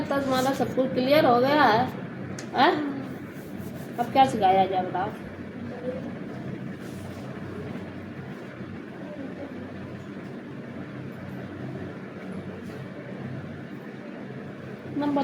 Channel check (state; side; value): identical; both; correlation 1.00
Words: तुम्हारा सब कुछ क्लियर हो गया है? अब क्या सिखाया जाए बताओ?